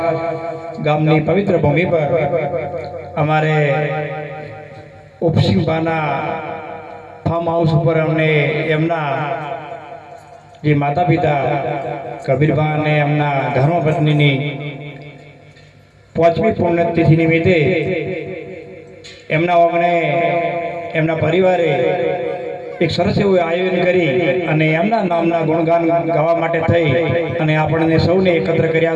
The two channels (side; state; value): both; identical; correlation 1.00